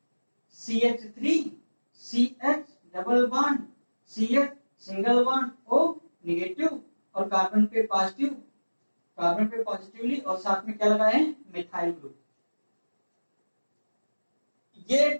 CH3 CH double bond CH single bond O negative, और कार्बन पे पॉजिटिवली, और साथ में क्या लगा है मिथाइल ग्रुप। ये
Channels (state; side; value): inverted; both; correlation -1.00